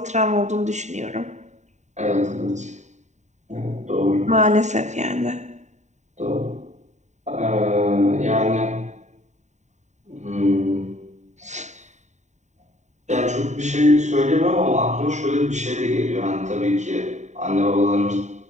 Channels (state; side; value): late; left; 0.34 ms